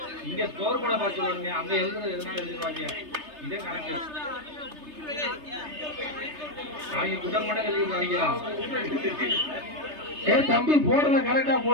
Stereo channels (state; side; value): late; left; 3.3 ms